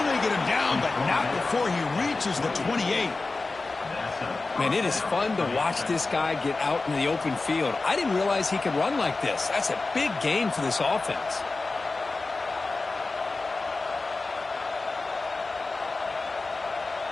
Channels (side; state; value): right; quieter; 3.6 dB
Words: get him down, but not before he reaches the 28. Man, it is fun to watch this guy get out in the open field. I didn't realize he could run like this. That's a big gain for this offense.